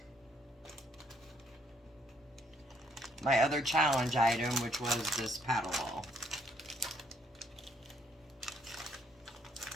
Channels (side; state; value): both; normal; correlation 0.69